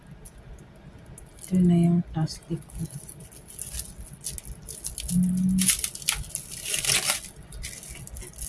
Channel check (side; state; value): both; identical; correlation 1.00